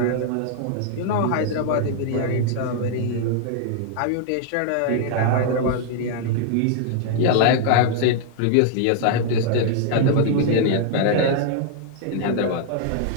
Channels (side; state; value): both; different; correlation 0.00